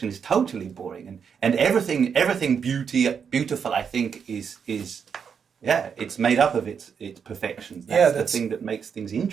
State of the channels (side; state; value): left; quieter; 6.9 dB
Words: is totally boring, and everything beautiful, I think, is it's made up of its perfections. That's the thing that makes things